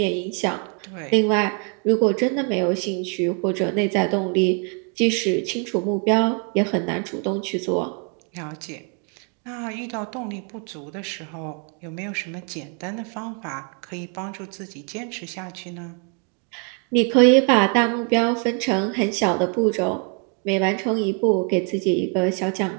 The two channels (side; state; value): left; quieter; 39.6 dB